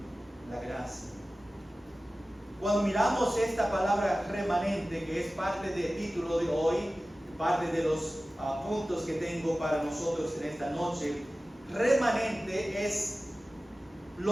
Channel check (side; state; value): both; normal; correlation 0.96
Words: la gracia. Cuando miramos esta palabra remanente, que es parte del título de hoy, parte de los puntos que tengo para nosotros en esta noche, remanente es